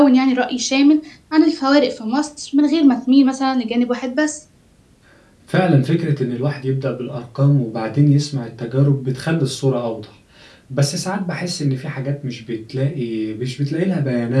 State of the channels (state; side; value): identical; both; correlation 1.00